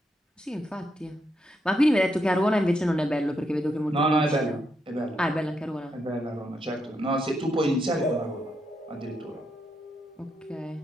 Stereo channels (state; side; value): normal; both; correlation 0.80